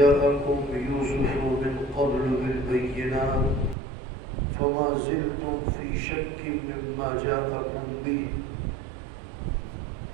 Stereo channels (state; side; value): drops out; left; at 3.8 s